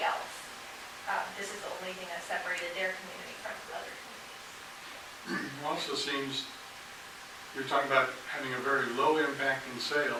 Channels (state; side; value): noise; right; rumble, 28 dB below the sound